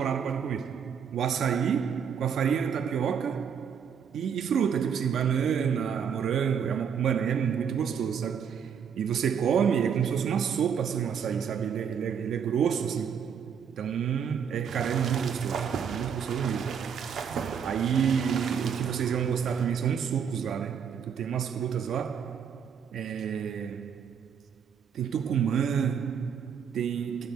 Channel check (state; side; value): quieter; left; 7.4 dB